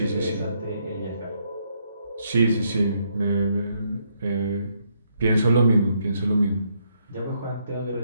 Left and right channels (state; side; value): inverted; both; correlation -0.74